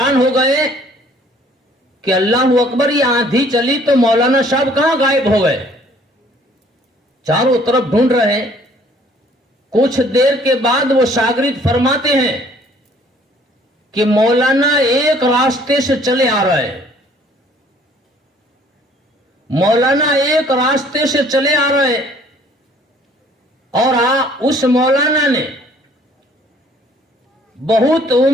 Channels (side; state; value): both; normal; correlation 0.58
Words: हो गए कि अल्लाह अकबर, ये आंधी चली तो मौलाना साहब कहां गायब हो गए। चारों तरफ ढूंढ रहे हैं। कुछ देर के बाद वो शागिर्द फरमाते हैं कि मौलाना एक रास्ते से चले आ रहे हैं, मौलाना एक रास्ते से चले आ रहे हैं, और उस मौलाना ने बहुत